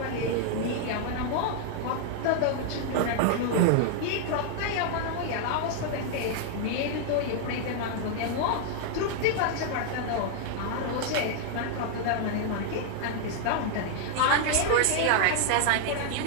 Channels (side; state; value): both; different; correlation 0.00